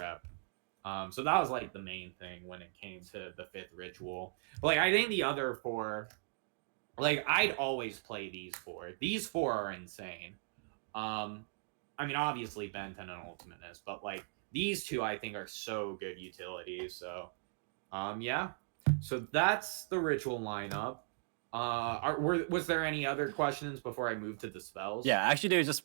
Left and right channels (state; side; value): silent; left; digital silence